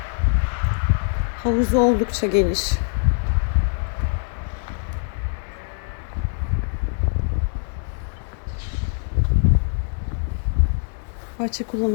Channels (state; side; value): silent; right; digital silence